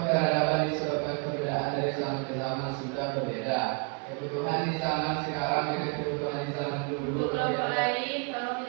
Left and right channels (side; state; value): left; quieter; 35.9 dB